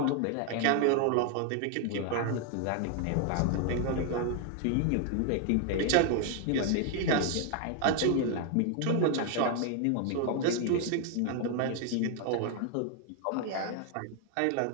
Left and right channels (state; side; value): different; both; correlation 0.00